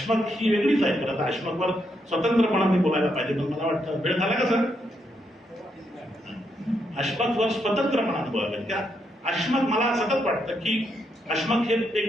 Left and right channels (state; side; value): normal; both; correlation 0.79